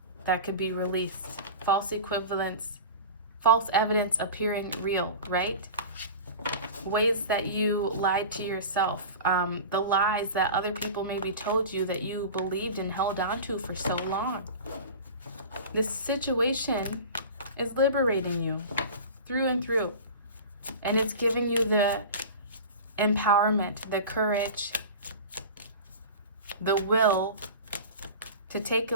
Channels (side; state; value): both; inverted; correlation -0.33